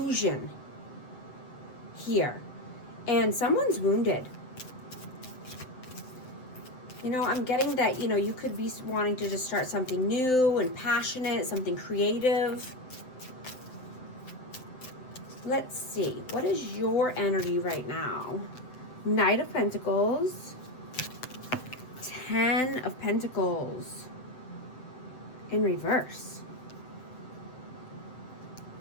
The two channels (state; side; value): late; right; 7.8 ms